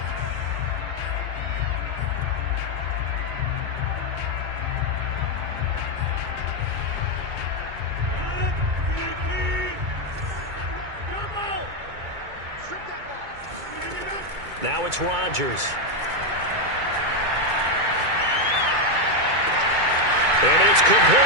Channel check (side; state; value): left; late; 2.2 ms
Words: Now it's Rodgers. And it's